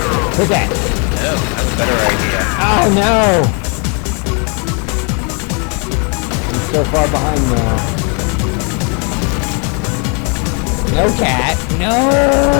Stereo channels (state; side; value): quieter; right; 35.9 dB